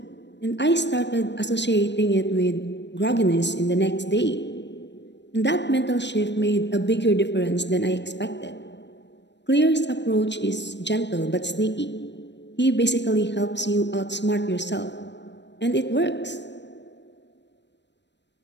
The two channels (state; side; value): late; right; 0.51 ms